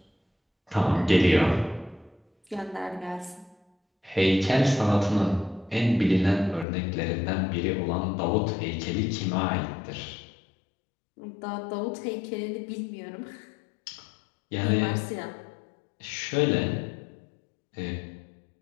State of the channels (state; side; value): drops out; right; at 6.7 s